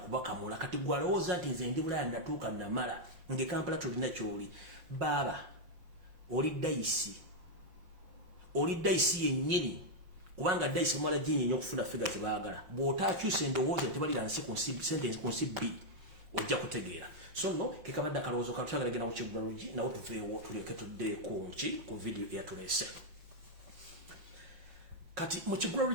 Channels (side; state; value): left; late; 5.5 ms